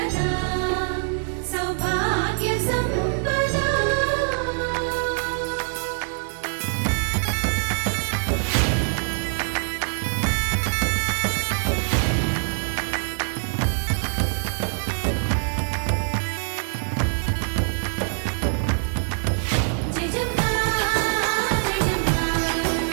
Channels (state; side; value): silent; left; digital silence